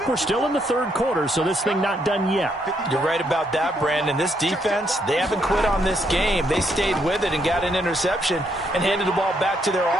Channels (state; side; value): normal; both; correlation 0.74